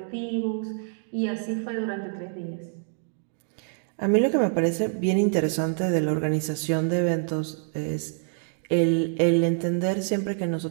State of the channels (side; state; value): left; silent; 61 dB below the other